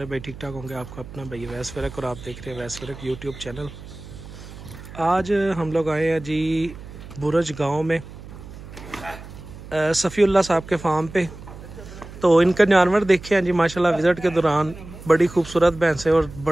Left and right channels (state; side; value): noise; right; hum, 15 dB below the sound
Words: भाई ठीक ठाक होंगे। आपका अपना भाई वैस फ़रक और आप देख रहे हैं वैस फ़रक यूट्यूब चैनल। आज हम लोग आए हैं जी बुरज गांव में सफ़ीउल्लाह साहब के फार्म पे। तो इनका जानवर देखे हैं जी माशाल्लाह। विज़िट के दौरान बड़ी खूबसूरत भैंसें और